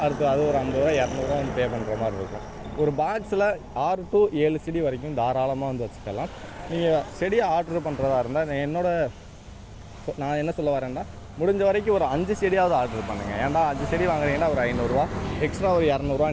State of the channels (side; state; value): both; identical; correlation 1.00